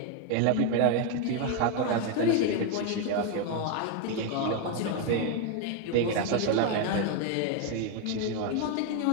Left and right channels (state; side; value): different; both; correlation 0.01